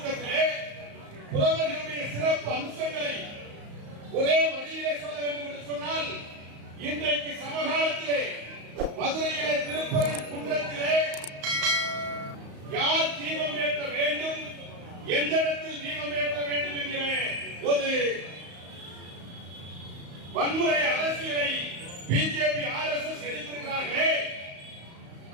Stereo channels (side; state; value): left; late; 35 ms